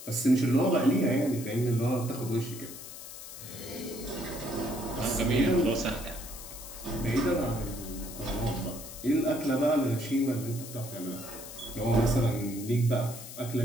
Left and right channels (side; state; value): left; noise; hiss, 12 dB below the sound